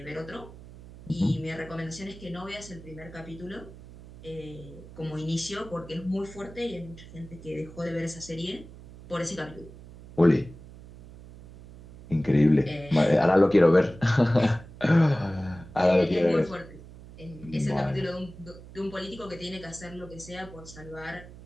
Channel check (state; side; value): noise; right; hum, 17 dB below the sound